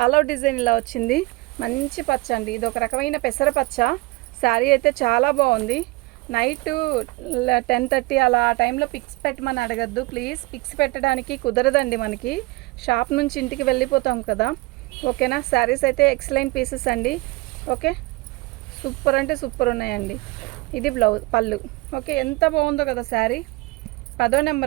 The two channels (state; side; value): quieter; left; 22.6 dB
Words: ఆల్ ఓవర్ డిజైన్ ఇలా వచ్చింది. మంచి పచ్చ అండి, ఇది ఒక రకమైన పెసర పచ్చ. శారీ అయితే చాలా బాగుంది. నైట్ 10:30 అలా ఆ టైంలో పిక్స్ పెట్టమని అడగద్దు ప్లీజ్. పిక్స్ పెట్టడానికి కుదరదండి, మనకి షాప్ నుంచి ఇంటికి వెళ్ళిపోతాం కదా. ఓకేనా, శారీస్ అయితే ఎక్సలెంట్ పీసెస్ అండి. ఓకే, సూపర్ అంటే సూపర్ ఉన్నాయండి. ఇది బ్లౌజ్, పళ్ళు. ఓకే, ఎంత బాగుందో కదా శారీ. 10వ